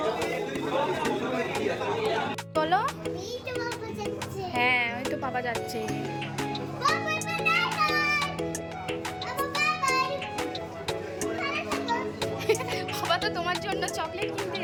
বলো। হ্যাঁ ওই তো পাপা যাচ্ছে। বাবা তো তোমার জন্য চকলেট কিনতে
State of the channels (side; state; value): both; identical; correlation 1.00